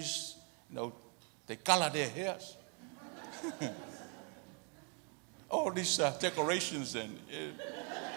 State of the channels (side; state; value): left; quieter; 38.1 dB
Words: they color their hairs. All these decorations and.